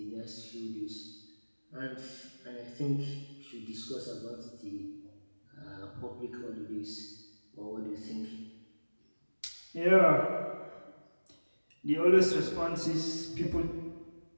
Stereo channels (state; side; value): inverted; both; correlation -1.00